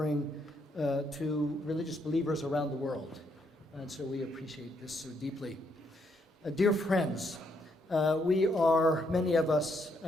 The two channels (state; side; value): normal; both; correlation 0.74